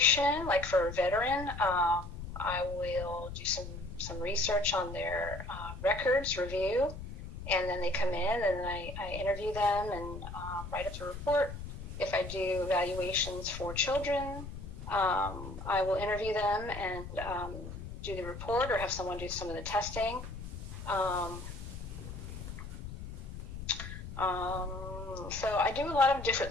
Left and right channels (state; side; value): noise; left; rumble, 10 dB below the sound